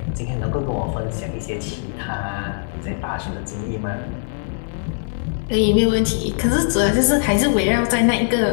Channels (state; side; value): silent; right; digital silence